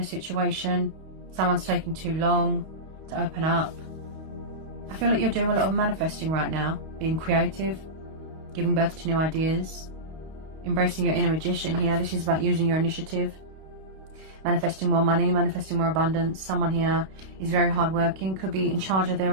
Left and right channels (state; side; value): late; left; 32 ms